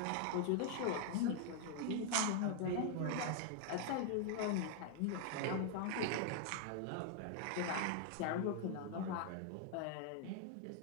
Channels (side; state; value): both; different; correlation 0.00